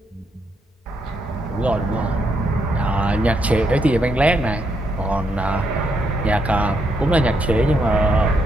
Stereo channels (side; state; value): both; normal; correlation 0.77